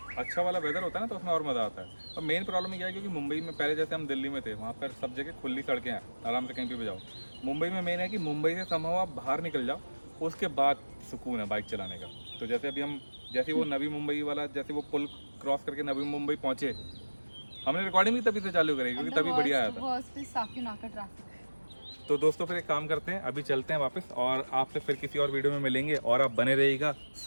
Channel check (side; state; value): both; inverted; correlation -1.00